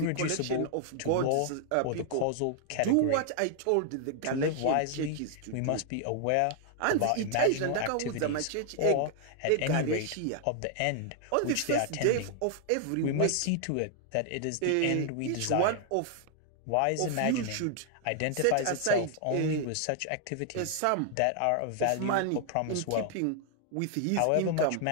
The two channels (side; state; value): both; different; correlation 0.00